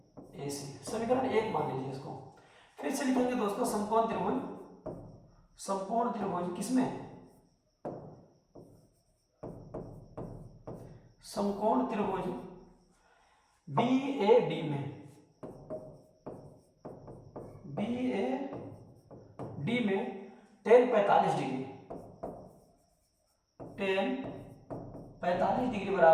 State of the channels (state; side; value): identical; both; correlation 1.00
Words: AC, समीकरण 1 मान लीजिए इसको। फिर से लिखेंगे दोस्तों समकोण त्रिभुज किसमें, समकोण त्रिभुज BAD में, BAD में टेन 45 डिग्री, टेन 45 डिग्री